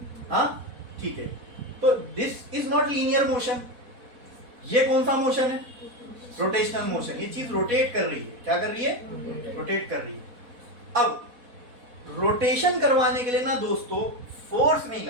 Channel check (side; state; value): left; late; 4.1 ms